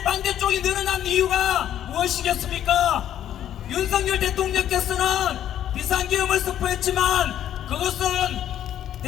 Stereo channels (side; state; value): right; quieter; 11.0 dB